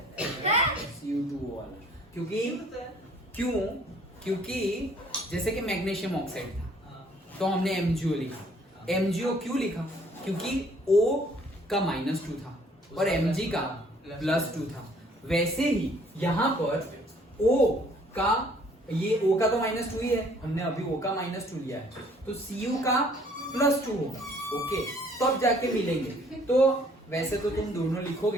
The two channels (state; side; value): normal; both; correlation 0.59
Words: Cu2O वाला. क्योंकि जैसे कि मैग्नीशियम ऑक्साइड था तो हमने MgO लिखा. MgO क्यों लिखा? क्योंकि O का -2 था और Mg का +2 था. वैसे ही यहाँ पर O का, ये O का तो -2 ही है, हमने अभी O का -2 लिया है, तो Cu का +2 होगा. ओके. तब जाके मिलेंगे. तो वैसे तो तुम दोनों